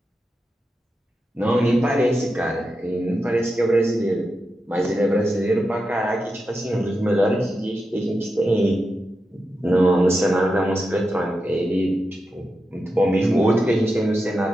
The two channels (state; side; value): normal; both; correlation 0.89